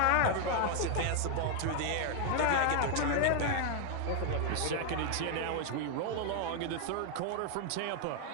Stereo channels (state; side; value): different; both; correlation 0.00